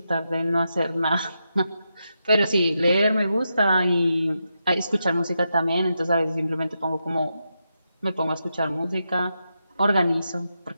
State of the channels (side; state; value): both; inverted; correlation -0.86